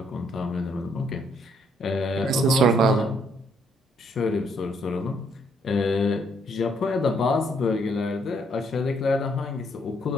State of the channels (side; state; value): both; normal; correlation 0.70